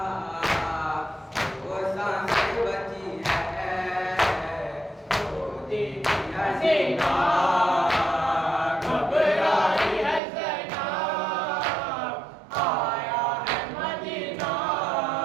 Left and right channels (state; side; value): drops out; left; at 10.2 s